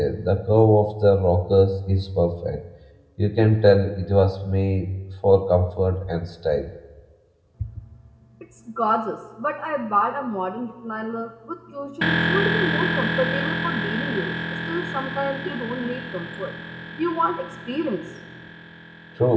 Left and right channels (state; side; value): identical; both; correlation 1.00